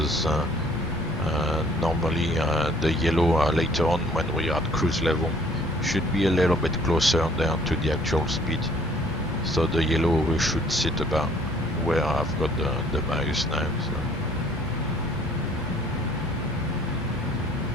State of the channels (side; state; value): both; normal; correlation 0.58